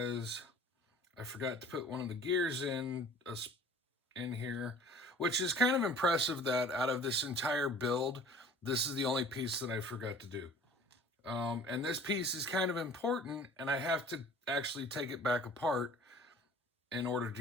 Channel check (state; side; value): normal; both; correlation 0.47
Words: I forgot to put one of the gears in here, which is kind of impressive that out of this entire build, this is the only piece that I forgot to do. And this piece is kind of important, and I have to actually take it back apart in order